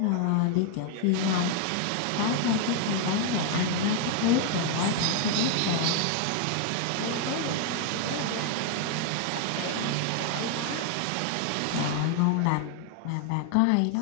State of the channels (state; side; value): different; both; correlation 0.00